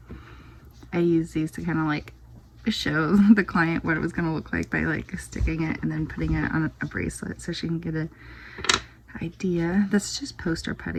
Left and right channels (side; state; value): both; identical; correlation 1.00